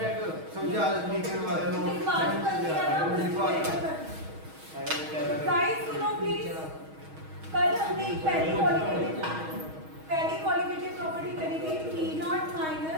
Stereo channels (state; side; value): late; left; 6.3 ms